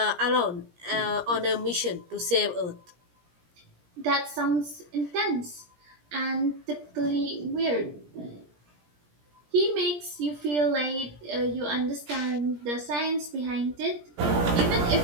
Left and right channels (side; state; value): left; late; 17 ms